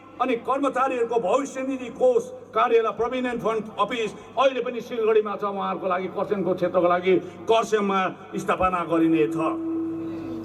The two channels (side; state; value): both; identical; correlation 1.00